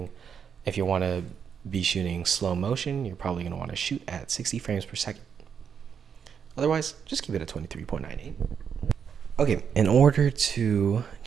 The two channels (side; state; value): left; quieter; 7.2 dB